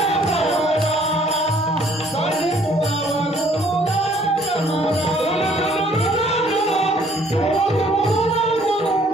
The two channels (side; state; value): both; normal; correlation 0.60